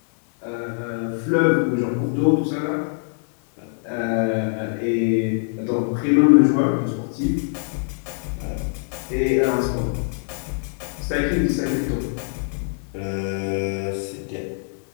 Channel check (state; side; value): silent; right; digital silence